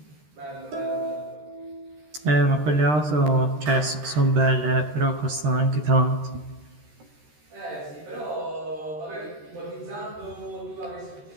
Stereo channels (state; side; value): late; left; 13 ms